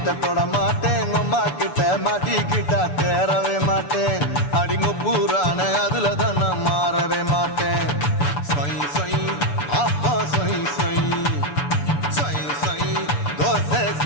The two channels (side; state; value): right; late; 6.9 ms